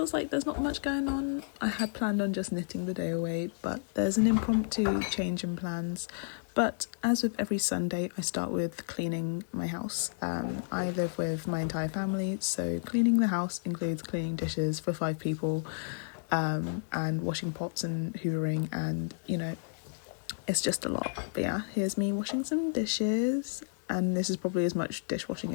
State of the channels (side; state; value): right; silent; digital silence